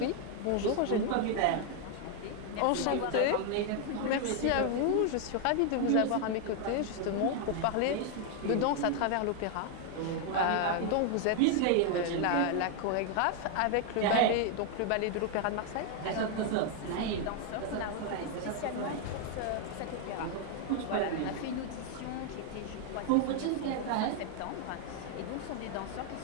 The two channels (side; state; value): both; different; correlation 0.00